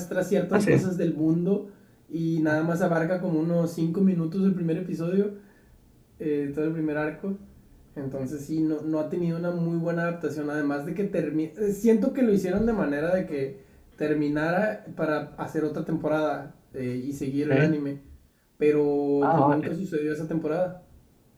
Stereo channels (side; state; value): both; identical; correlation 1.00